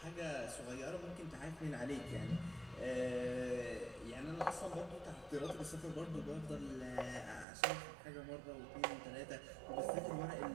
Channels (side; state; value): left; drops out; at 7.5 s